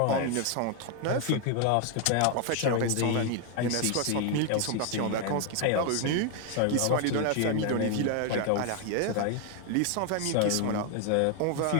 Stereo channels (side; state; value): both; different; correlation 0.01